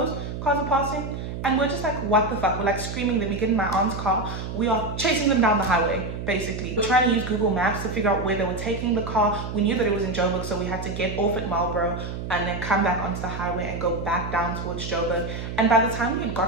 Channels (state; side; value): noise; right; hum, 6 dB below the sound